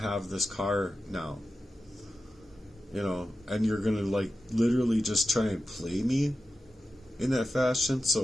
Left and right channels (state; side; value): normal; both; correlation 0.92